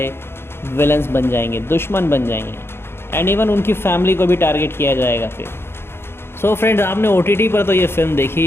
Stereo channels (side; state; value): right; late; 0.11 ms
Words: विलन्स बन जाएंगे, दुश्मन बन जाएंगे, एंड इवन उनकी फैमिली को भी टारगेट किया जाएगा फिर। सो फ्रेंड्स, आपने OTT पर तो ये फिल्म देखी